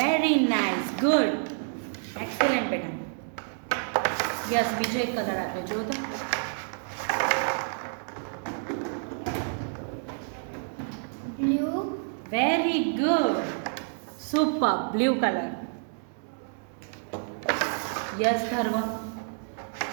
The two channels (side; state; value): left; silent; 58 dB below the other